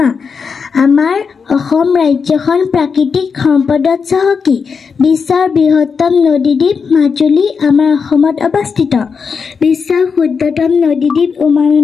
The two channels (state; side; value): quieter; right; 5.7 dB